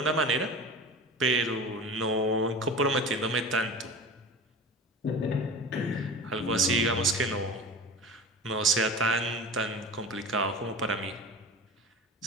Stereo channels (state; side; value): normal; both; correlation 0.34